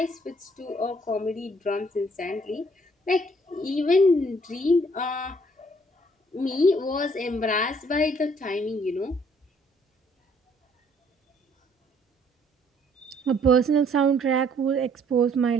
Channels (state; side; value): normal; both; correlation 0.63